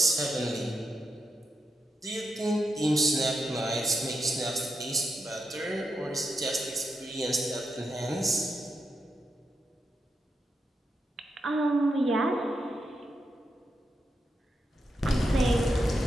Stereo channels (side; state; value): both; normal; correlation 0.83